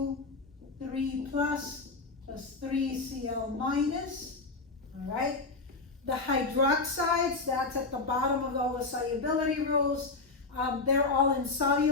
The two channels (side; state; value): right; quieter; 3.8 dB